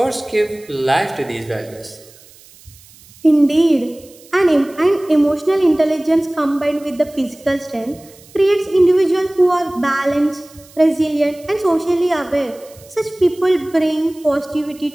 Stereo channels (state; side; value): noise; right; hiss, 25 dB below the sound